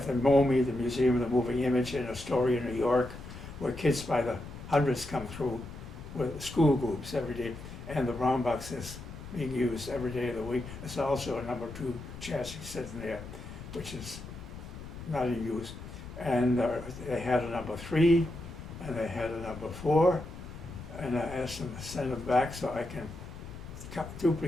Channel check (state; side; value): noise; left; rumble, 12 dB below the sound